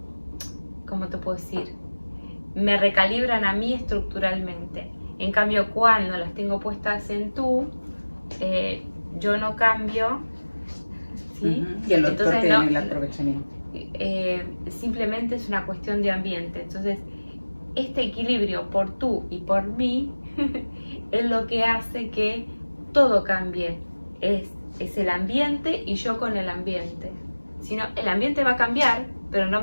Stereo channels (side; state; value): both; inverted; correlation -1.00